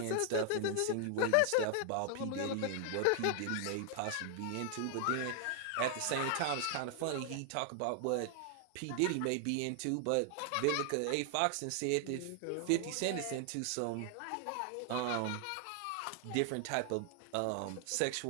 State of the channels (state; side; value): different; both; correlation 0.00